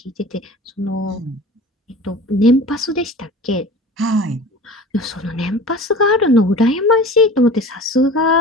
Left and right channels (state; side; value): normal; both; correlation 0.39